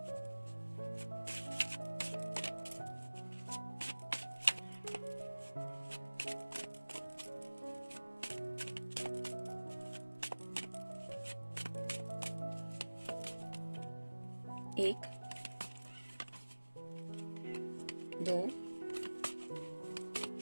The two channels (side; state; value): both; inverted; correlation -1.00